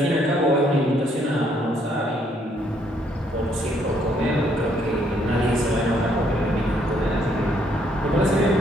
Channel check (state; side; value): normal; both; correlation 0.69